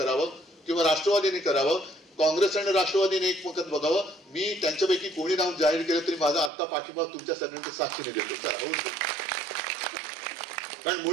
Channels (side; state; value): left; drops out; at 6.5 s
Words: किंवा राष्ट्रवादीने करावं. काँग्रेस आणि राष्ट्रवादीने एकमत बघावं. मी त्यांच्यापैकी कोणी नाव जाहीर केलं तरी माझा आत्ता पाठिंबा तुमच्या सगळ्यांच्या साक्षीने देतो. कारण